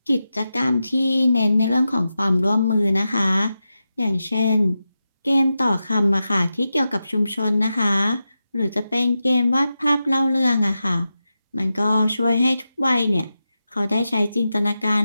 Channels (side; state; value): both; inverted; correlation -0.91